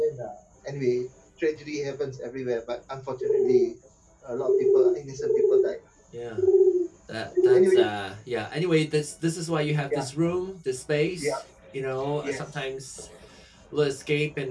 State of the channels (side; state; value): both; identical; correlation 1.00